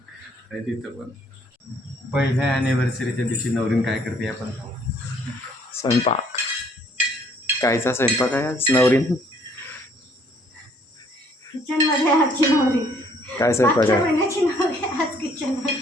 आणि तिथं पण पहिल्या ॲनिव्हर्सरीच्या दिवशी नवरीन काय करते आपण पाहू. स्वयंपाक, कायचा स्वयंपाक आहे आज नवरीन? किचन मध्ये आजची नवरी. काय स्वयंपाक मागच्या आहे? महिन्याची नवरी आज किचन मध्ये.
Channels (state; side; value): normal; both; correlation 0.63